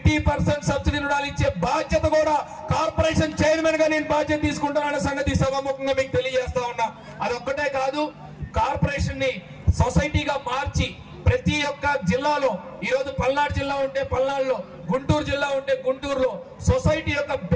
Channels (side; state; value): both; identical; correlation 1.00